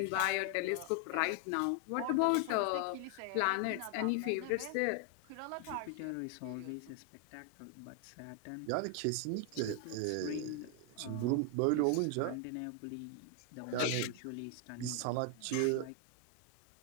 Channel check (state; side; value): different; both; correlation 0.00